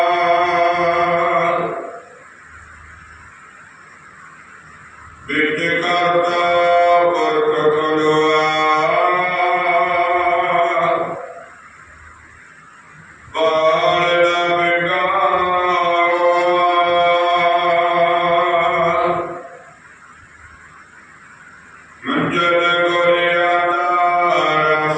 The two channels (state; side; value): identical; both; correlation 1.00